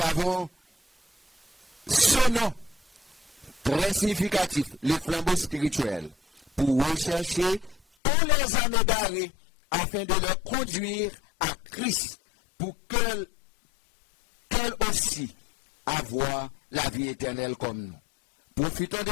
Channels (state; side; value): drops out; right; at 7.8 s